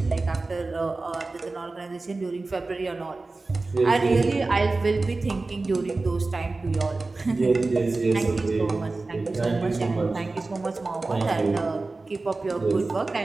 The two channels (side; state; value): left; quieter; 3.4 dB